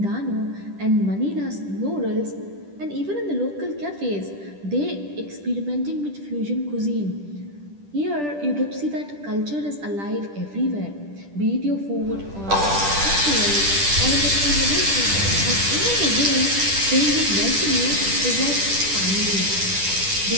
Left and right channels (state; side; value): late; left; 10 ms